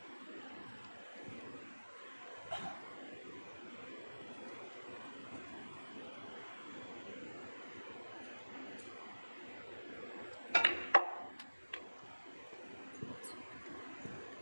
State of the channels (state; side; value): inverted; both; correlation -1.00